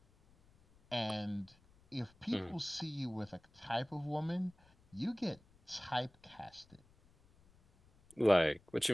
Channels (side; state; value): left; noise; rumble, 29 dB below the sound